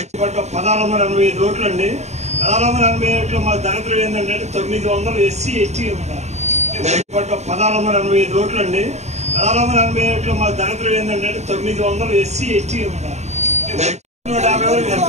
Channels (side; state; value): left; late; 0.32 ms